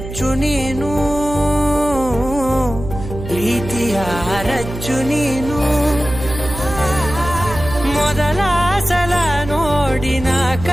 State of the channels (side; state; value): right; noise; hum, 9 dB below the sound